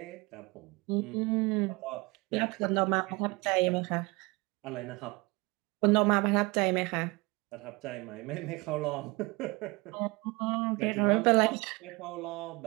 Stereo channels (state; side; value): quieter; left; 25.1 dB